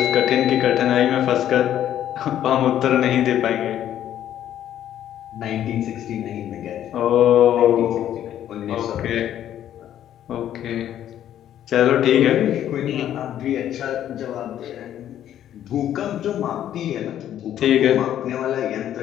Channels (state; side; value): quieter; right; 11.2 dB